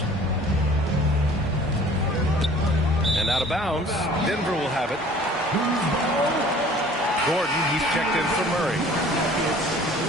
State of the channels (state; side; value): normal; both; correlation 0.50